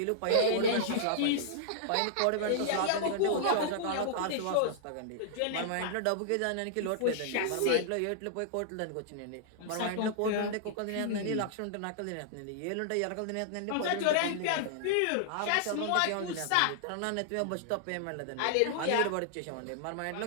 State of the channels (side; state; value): both; different; correlation -0.01